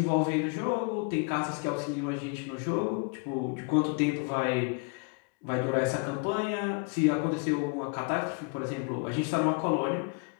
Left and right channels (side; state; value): right; quieter; 31.8 dB